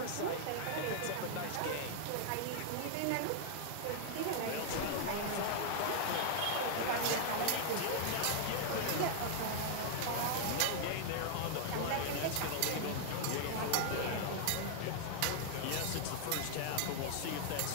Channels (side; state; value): both; different; correlation -0.01